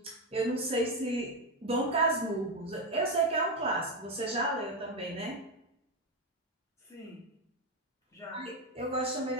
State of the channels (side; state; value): both; normal; correlation 0.09